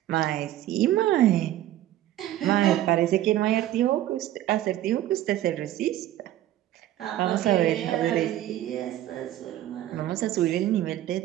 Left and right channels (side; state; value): left; quieter; 13.4 dB